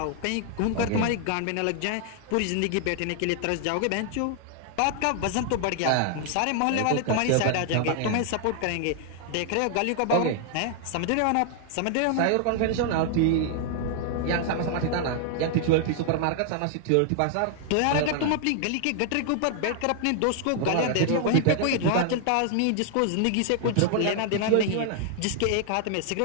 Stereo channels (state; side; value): different; both; correlation 0.00